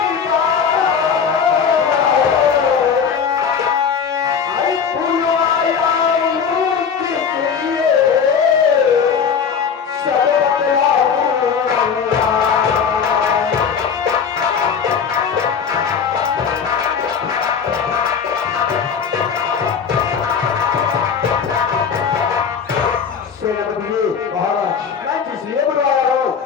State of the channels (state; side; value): quieter; right; 6.7 dB